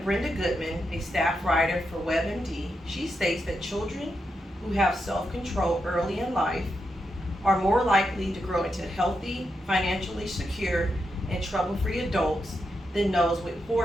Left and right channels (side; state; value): both; normal; correlation 0.85